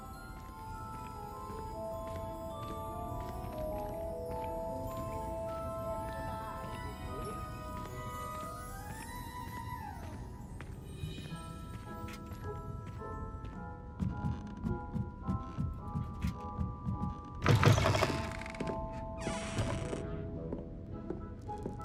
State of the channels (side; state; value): both; identical; correlation 1.00